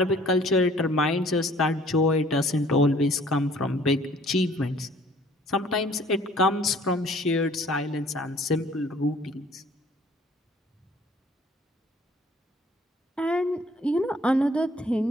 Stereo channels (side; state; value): both; normal; correlation 0.55